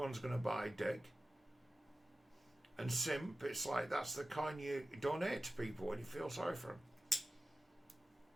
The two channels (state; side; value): normal; both; correlation 0.94